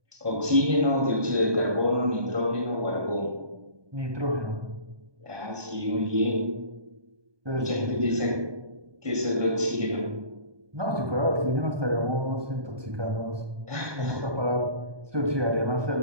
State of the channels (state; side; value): late; left; 1.2 ms